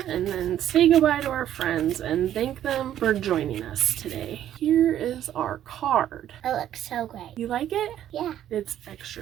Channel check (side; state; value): left; quieter; 11.3 dB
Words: and then say goodbye to our friends and thank them for joining us today. Here is our card. It looks so great. You like it? Yeah. It's